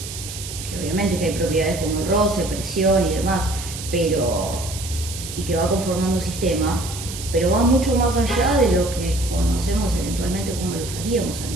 obviamente que hay propiedades como el roce, presión y demás, y que va conformando un sistema, pero va mucho más allá de lo que conocemos eventualmente como lo usaríamos al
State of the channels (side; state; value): right; noise; hiss, 10 dB below the sound